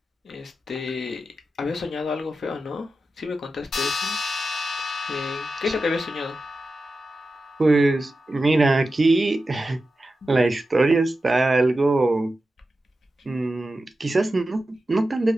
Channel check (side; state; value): both; normal; correlation 0.92